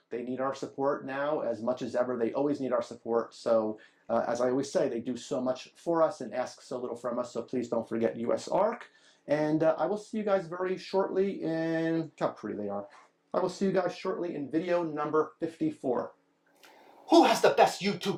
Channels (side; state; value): both; identical; correlation 1.00